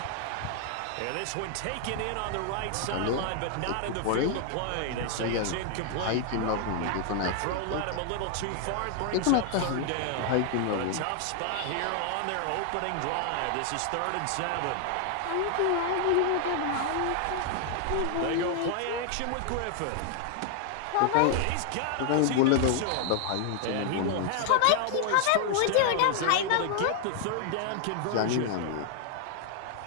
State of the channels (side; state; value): both; different; correlation 0.00